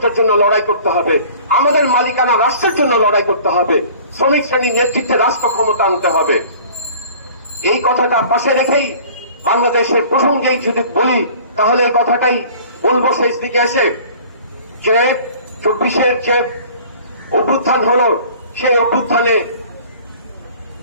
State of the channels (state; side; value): inverted; both; correlation -0.47